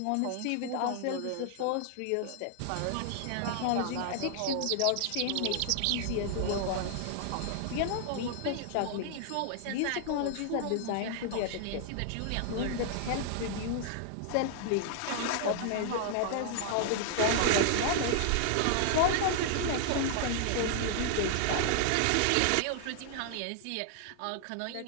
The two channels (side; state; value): both; different; correlation 0.00